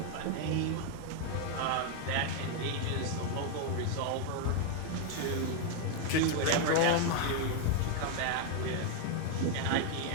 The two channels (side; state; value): both; different; correlation 0.00